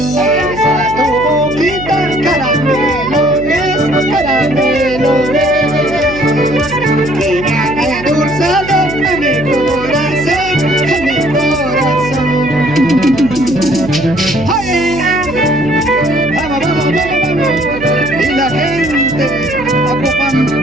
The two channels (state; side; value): noise; right; hum, 12 dB below the sound